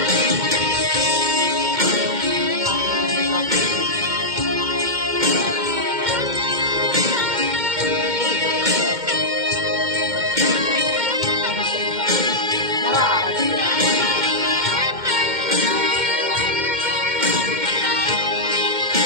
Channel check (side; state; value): left; late; 2.1 ms